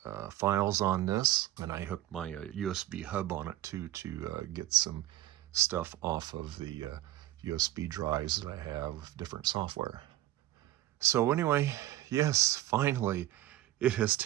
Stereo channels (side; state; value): left; quieter; 14.7 dB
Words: files on this, and I hooked my USB hub on it too to get some stuff off of the USB drives that I have, different software. So anyway, yes, finally, it is